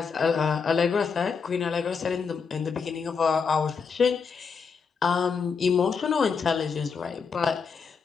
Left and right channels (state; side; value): quieter; right; 5.7 dB